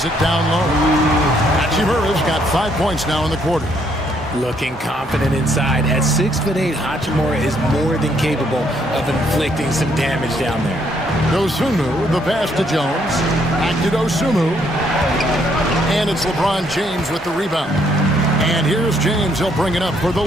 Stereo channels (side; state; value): both; normal; correlation 0.70